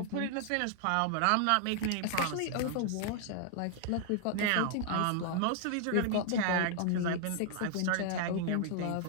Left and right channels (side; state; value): both; different; correlation 0.00